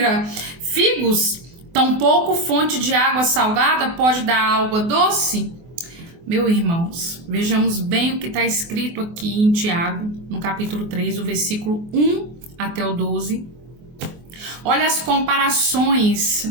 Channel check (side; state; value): left; late; 24 ms